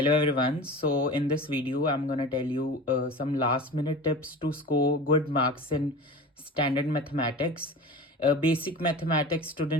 everyone. So in this video, I'm gonna tell you some last minute tips to score good marks in standard mathematics. Basic mathematics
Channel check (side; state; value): both; normal; correlation 0.34